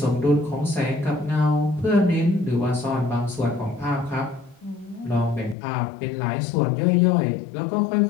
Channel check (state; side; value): drops out; right; at 5.6 s